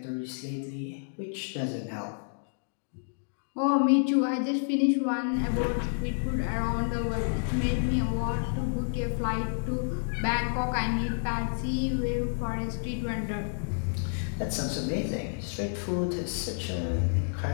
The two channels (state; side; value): silent; right; digital silence